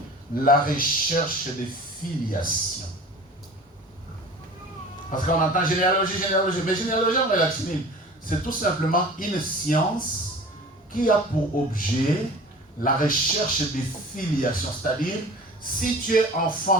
la recherche des filiations. Parce qu'on entend généalogie, mais généalogie en latine, c'est tout simplement une science qui a pour objet la recherche des filiations. C'est-à-dire, si tu es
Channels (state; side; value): normal; both; correlation 0.41